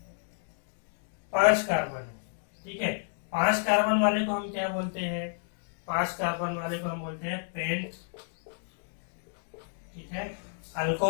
5 कार्बन है। ठीक है, 5 कार्बन वाले को हम क्या बोलते हैं, 5 कार्बन वाले को हम बोलते हैं पेंट। ठीक है,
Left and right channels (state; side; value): silent; right; digital silence